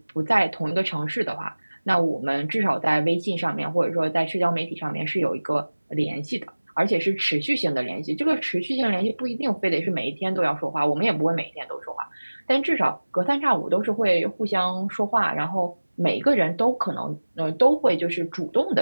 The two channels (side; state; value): both; inverted; correlation -1.00